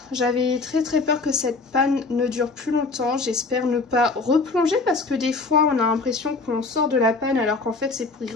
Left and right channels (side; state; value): right; quieter; 3.8 dB